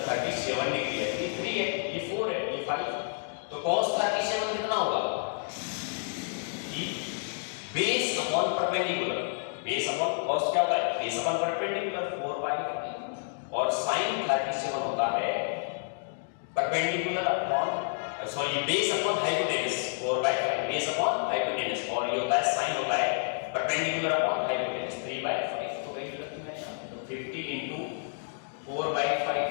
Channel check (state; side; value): silent; right; digital silence